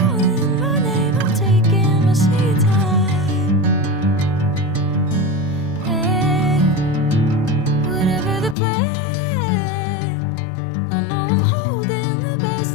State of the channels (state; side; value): drops out; right; at 8.6 s